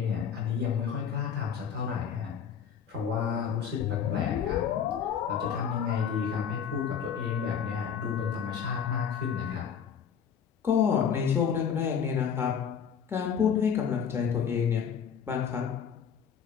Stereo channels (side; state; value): right; quieter; 7.5 dB